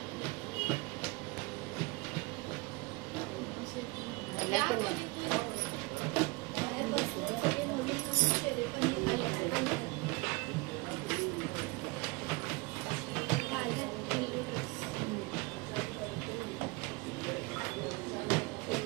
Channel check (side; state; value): left; quieter; 26.0 dB